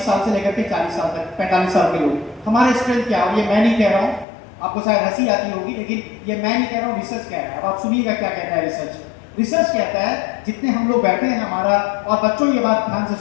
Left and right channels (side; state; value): right; drops out; at 4.2 s